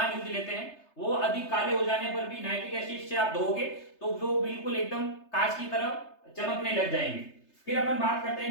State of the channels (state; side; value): late; right; 3.3 ms